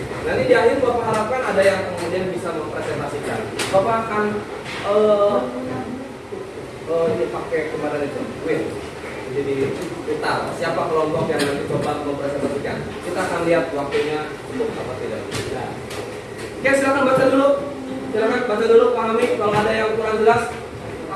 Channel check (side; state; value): both; identical; correlation 1.00